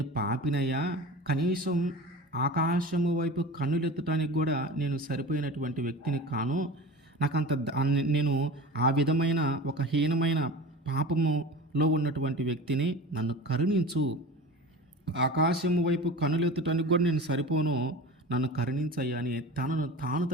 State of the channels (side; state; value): both; normal; correlation 0.34